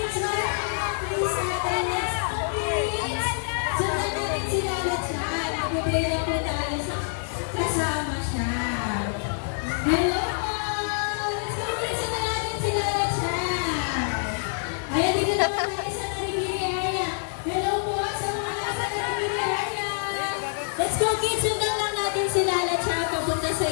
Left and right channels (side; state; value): right; silent; 61 dB below the other